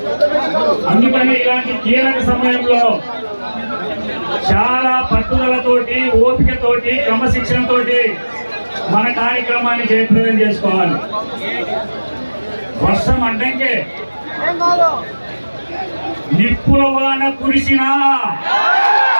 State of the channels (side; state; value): both; inverted; correlation -1.00